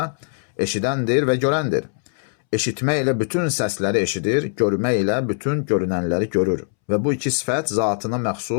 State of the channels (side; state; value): right; silent; 65 dB below the other